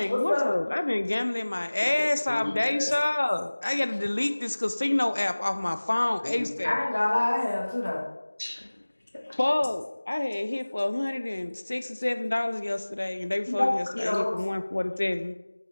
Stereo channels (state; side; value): inverted; both; correlation -1.00